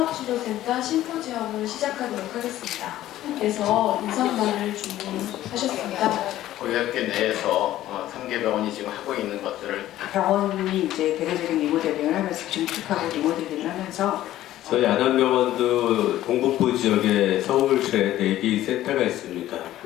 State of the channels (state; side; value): quieter; right; 13.9 dB